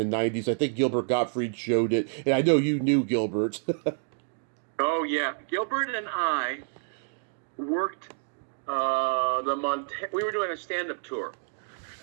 90s. I think Gilbert Gottfried showed it, and I know you knew Gilbert. Oh, yeah. Gilbert and I worked we were doing a stand-up tour.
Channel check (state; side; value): silent; left; digital silence